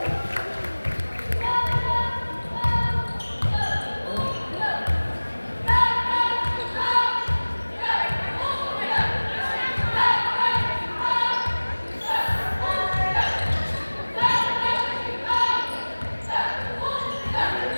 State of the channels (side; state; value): both; inverted; correlation -1.00